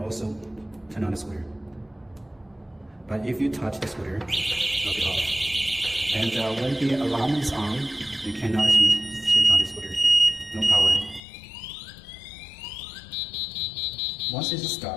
turn on the scooter. But if you touch the scooter, it'll be off. And when the alarm is on, you cannot switch on the scooter. No power. Once it's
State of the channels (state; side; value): drops out; right; at 11.2 s